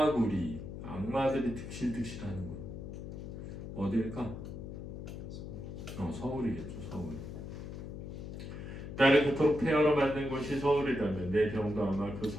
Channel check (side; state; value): left; noise; hum, 9 dB below the sound